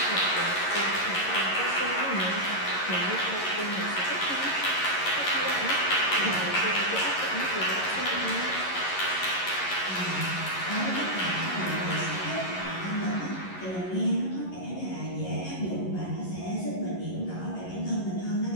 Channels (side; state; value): right; late; 11 ms